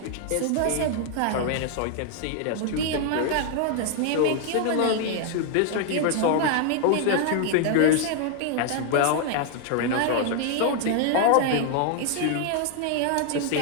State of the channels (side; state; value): both; different; correlation 0.00